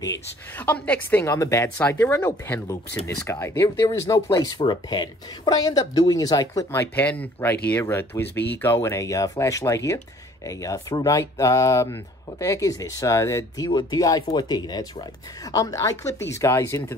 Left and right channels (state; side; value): normal; both; correlation 0.55